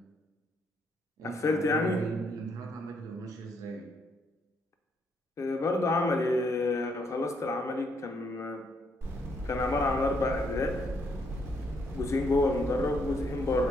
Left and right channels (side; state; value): both; normal; correlation 0.73